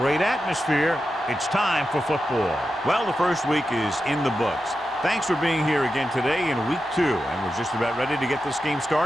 atmosphere. It's time for football. Well, the first week is in the books. Thanks for being here again today in week 2. And we're just about ready to get this game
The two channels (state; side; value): normal; both; correlation 0.90